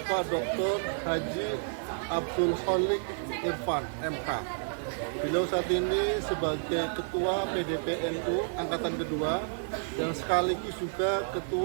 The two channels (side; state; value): left; silent; digital silence